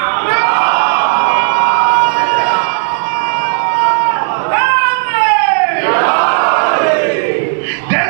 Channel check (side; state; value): left; silent; digital silence